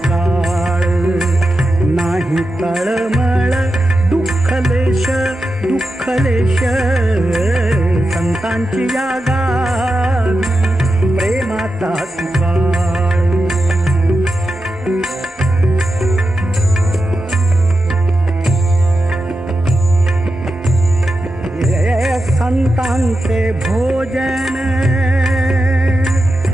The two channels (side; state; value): both; normal; correlation 0.90